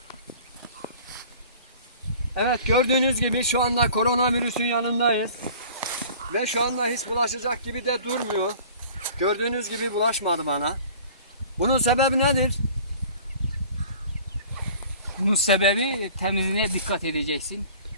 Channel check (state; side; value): inverted; both; correlation -0.46